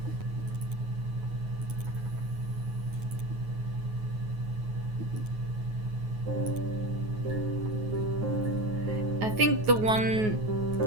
I think the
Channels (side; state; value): left; late; 9.4 ms